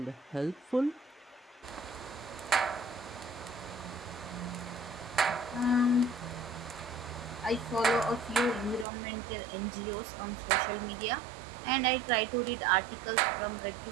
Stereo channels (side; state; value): left; drops out; at 8.8 s